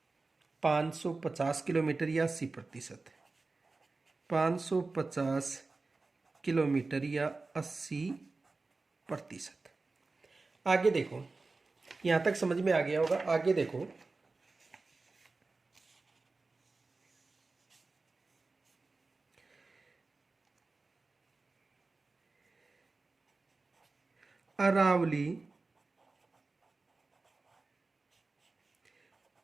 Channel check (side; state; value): left; quieter; 3.7 dB